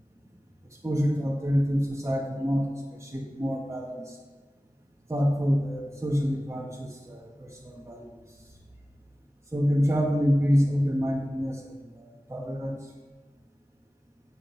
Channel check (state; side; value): normal; both; correlation 0.96